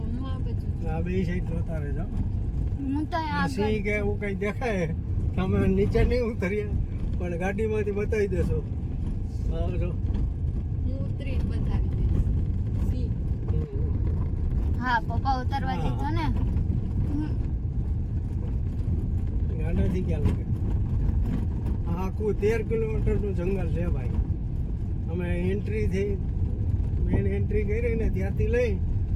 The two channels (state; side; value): identical; both; correlation 1.00